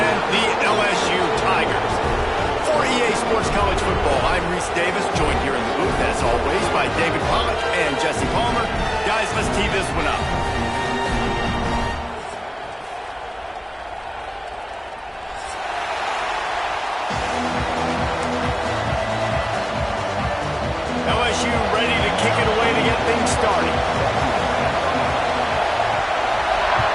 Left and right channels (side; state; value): both; identical; correlation 1.00